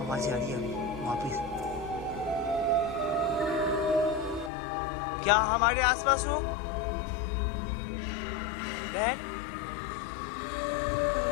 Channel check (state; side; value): drops out; right; at 4.5 s